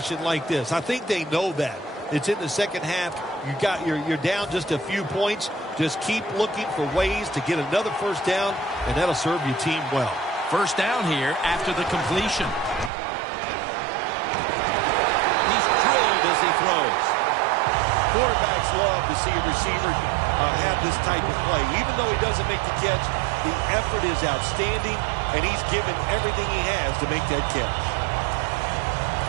like this. I think they know that. It's in the second half. You're down just a few points. Just keep looking for ways to get another first down, and that'll serve your team well. First down here after the completion. He's drilled as he throws. Quarterbacks love to see a receiver have this type of play. Even though he doesn't make the catch, the effort is outstanding, and he's given everything he has to make that catch.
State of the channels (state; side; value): drops out; left; at 12.9 s